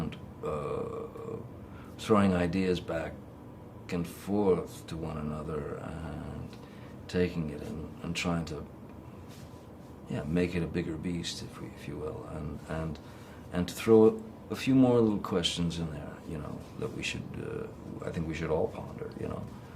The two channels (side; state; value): both; identical; correlation 1.00